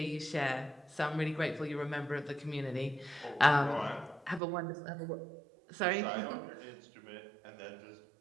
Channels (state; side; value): drops out; left; at 4.4 s